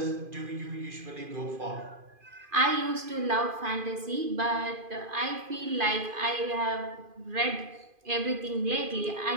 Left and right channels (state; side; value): late; left; 2.5 ms